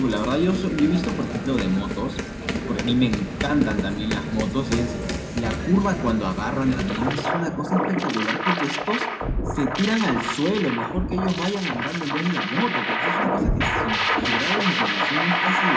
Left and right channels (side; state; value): both; identical; correlation 1.00